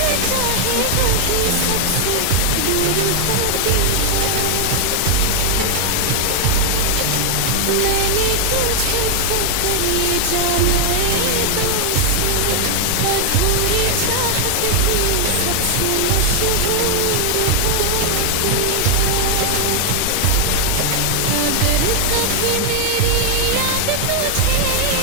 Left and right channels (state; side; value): different; both; correlation 0.00